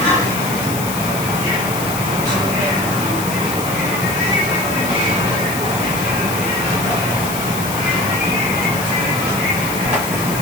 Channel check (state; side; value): noise; left; hiss, 8 dB below the sound